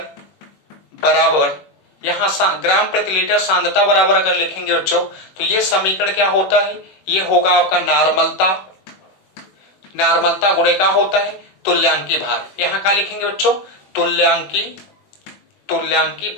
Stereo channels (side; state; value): right; late; 21 ms